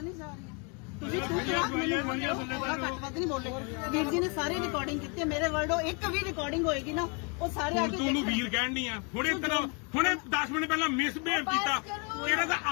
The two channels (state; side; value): quieter; right; 33.6 dB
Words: ਨਹੀਂ ਜਾ ਰਹੀਆਂ। ਤੁਸੀਂ ਮੈਨੂੰ ਥੋੜਾ ਘੱਟ ਵੱਧ ਨਹੀਂ ਬੋਲੇ। ਵੀਰ ਜੀ ਨੇ ਸਾਰੀ ਰਿਕਾਰਡਿੰਗ ਕੀਤੀ ਹੈ, ਮੇਰੇ ਵਰਡੋ ਇੱਕ ਵੀ ਰਿਕਾਰਡਿੰਗ ਹੋਏਗੀ ਨਾ, ਉਹ ਸਾਰੇ ਆ ਕੇ ਤੂੰ ਨੂੰ ਵੀਰ ਕਹਿਣ ਦੀ ਆ। ਹੁਣੇ 10 ਮਿੰਟ ਪਹਿਲਾਂ ਮਿਸਬਿਹੇਵ ਕੀਤਾ, ਇਹਦਾ ਤਾਂ